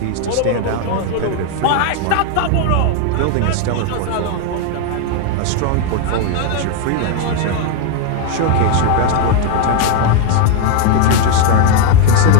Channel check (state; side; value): different; both; correlation 0.01